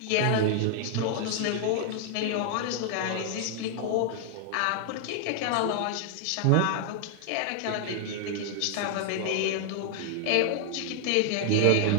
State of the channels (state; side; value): different; both; correlation 0.00